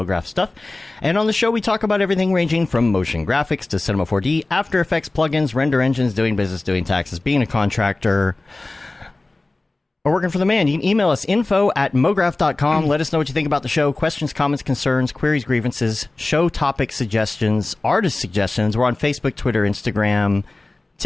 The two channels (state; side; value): quieter; right; 3.1 dB